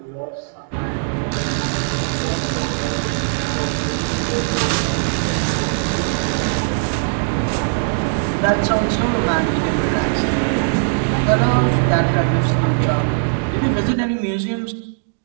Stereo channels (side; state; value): left; silent; digital silence